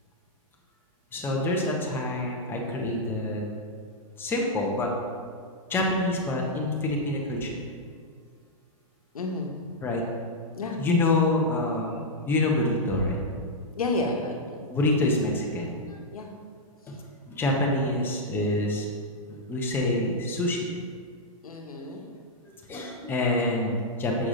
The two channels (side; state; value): both; normal; correlation -0.04